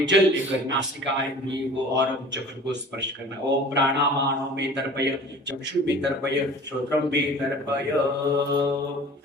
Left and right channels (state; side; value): normal; both; correlation 0.44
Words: जल लेकर नासिका इंद्रिय को और चक्षु को स्पर्श करना। ओम प्राणामानो में तर्पय, चक्षु में तर्पय, श्रोत्रम में तर्पय।